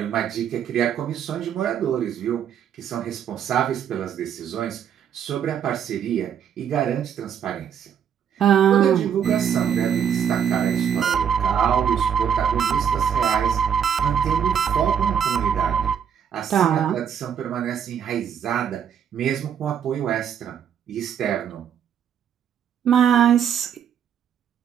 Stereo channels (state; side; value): quieter; left; 8.4 dB